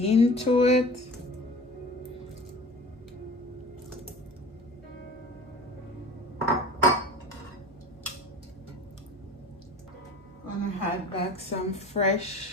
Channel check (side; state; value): both; normal; correlation 0.40